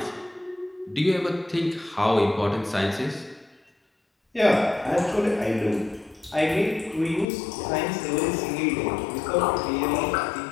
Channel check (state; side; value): drops out; right; at 7.2 s